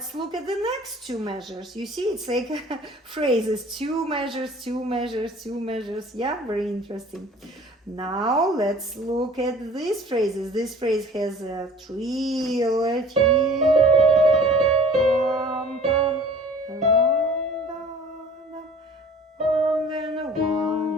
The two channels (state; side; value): normal; both; correlation 0.48